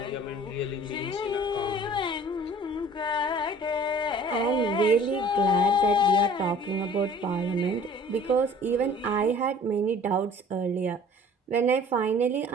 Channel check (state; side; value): normal; both; correlation 0.49